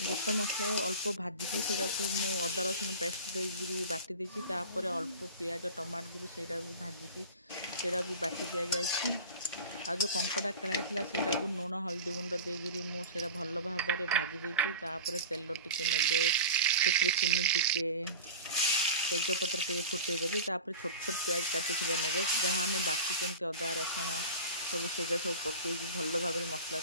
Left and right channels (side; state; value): both; inverted; correlation -0.33